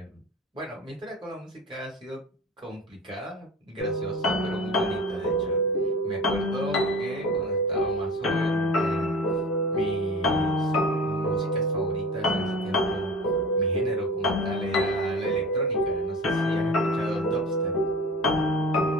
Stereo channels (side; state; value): both; normal; correlation 0.37